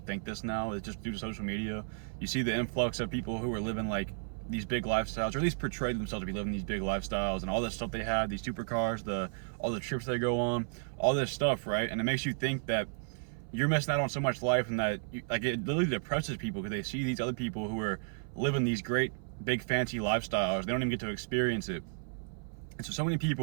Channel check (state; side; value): silent; left; 56 dB below the other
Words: this now is just due to social media. You see the influx of people who are living like these big lifestyles, or at least portray themselves to be living these big lifestyles, and all this stuff they have, these supercars, all the trips they go on, all this stuff, right? And it makes you think that you're missing out on so much life, and that like it literally depresses people because they see these other people who are living these great big fancy lifestyles. They don't even get to experience it. And so many